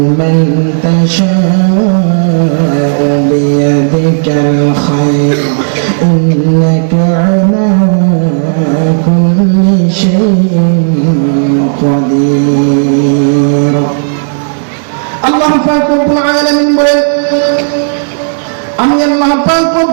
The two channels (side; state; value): left; silent; digital silence